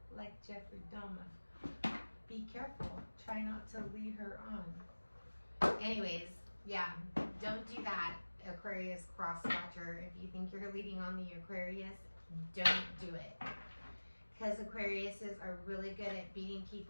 like Jeffrey Dahmer. Be careful. Try not to lead her on. Anyways, yeah, don't do that, Aquarius cross-watcher. If you think you're leading on the Aquarius, don't do it. Because Aquariuses are really good at beating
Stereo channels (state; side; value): inverted; both; correlation -1.00